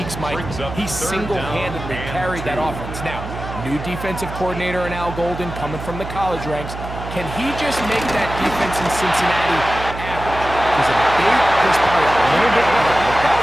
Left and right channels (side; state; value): right; noise; hum, 9 dB below the sound